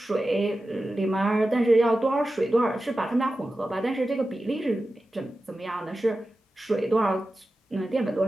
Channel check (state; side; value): normal; both; correlation 0.93